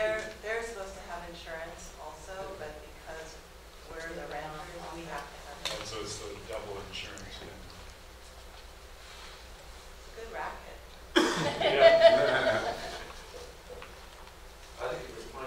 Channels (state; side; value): identical; both; correlation 1.00